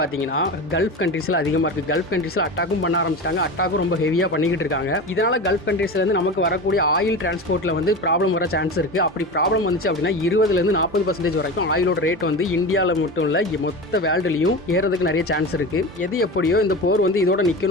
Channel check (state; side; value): normal; both; correlation 0.27